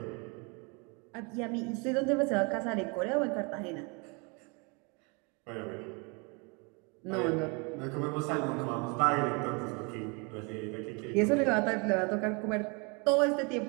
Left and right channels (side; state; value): left; quieter; 31.5 dB